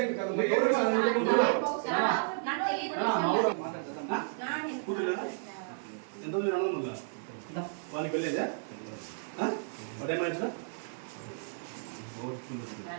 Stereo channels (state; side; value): silent; left; digital silence